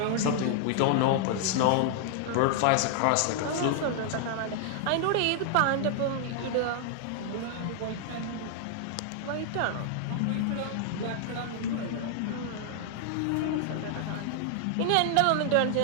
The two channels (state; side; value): different; both; correlation 0.00